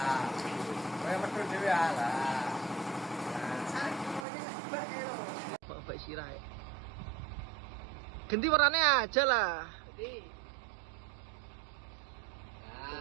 Kowe metu dhewe lah. Bapak Sirai. Ganti warnanya aja lah. Putih.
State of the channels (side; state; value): left; drops out; at 4.2 s